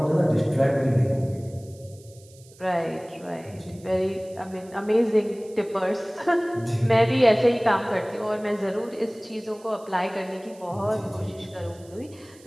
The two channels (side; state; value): right; noise; hiss, 25 dB below the sound